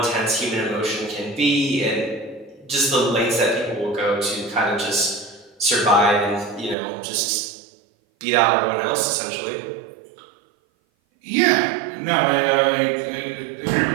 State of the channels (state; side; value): drops out; left; at 6.8 s